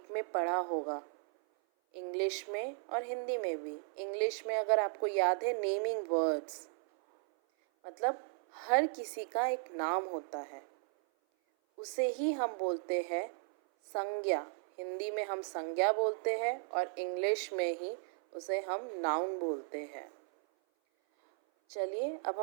में पढ़ा होगा, इंग्लिश में और हिंदी में भी। इंग्लिश में अगर आपको याद है, नेमिंग वर्ड्स, मतलब हर किसी का एक नाम होता है, उसे ही हम बोलते हैं संज्ञा। हिंदी में हम संज्ञा बोलते हैं और इंग्लिश में ही उसे हम नाउन बोलते हैं। चलिए अब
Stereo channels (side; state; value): left; silent; 54 dB below the other